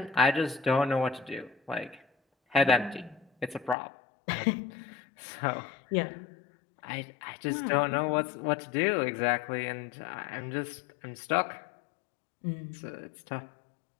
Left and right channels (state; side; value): drops out; right; at 3.8 s